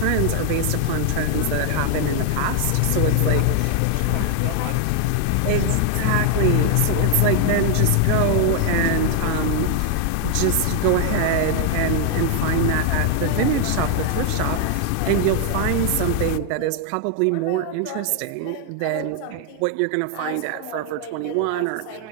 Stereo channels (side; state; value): both; different; correlation 0.00